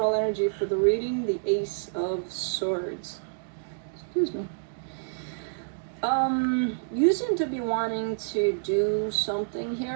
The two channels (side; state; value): left; silent; digital silence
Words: energy for the reading, the Ace of Swords. Excuse me. You seem to be wanting to do something